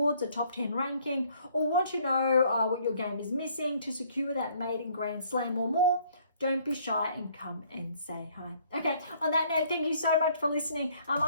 a top 10 ranking, or want to know what your game is missing to secure that maiden Grand Slam or more, don't be shy and come and say hi. Okay, on that note, thank you so much for listening.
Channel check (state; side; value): inverted; both; correlation -0.62